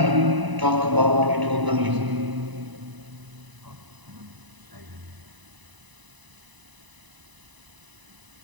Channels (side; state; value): left; late; 1.0 ms